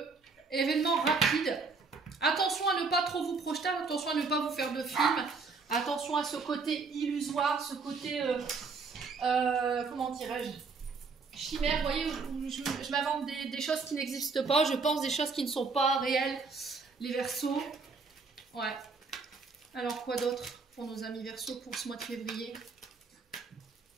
événement rapide. Attention à ne pas trop vous projeter, attention à ne pas vous faire de film. Attention à ce côté illusoire, ce côté comment dirais-je, chimère. Vous voyez, je m'invente des choses qui n'existent pas, je pense des choses qui ne sont pas réelles. Les Verseaux. Ouais. Alors quoi d'autre pour nos amis Verseaux pour ce mois de février?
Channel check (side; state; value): left; quieter; 4.5 dB